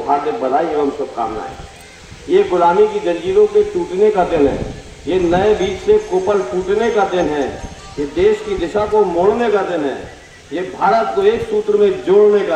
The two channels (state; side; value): identical; both; correlation 1.00